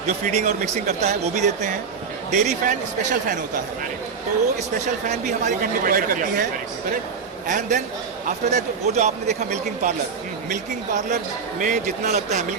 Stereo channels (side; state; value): left; quieter; 5.7 dB